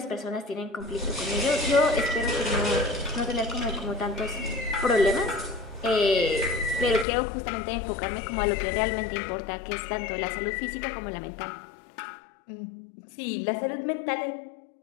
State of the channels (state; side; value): drops out; right; at 7.1 s